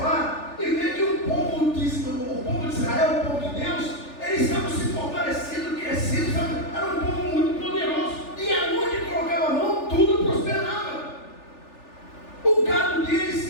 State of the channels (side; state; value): right; late; 3.4 ms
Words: e ver que o povo de Israel, o povo de Deus, eles estavam se fortalecendo, crescendo, era um povo muito poderoso, e aonde colocava a mão, tudo prosperava. O gado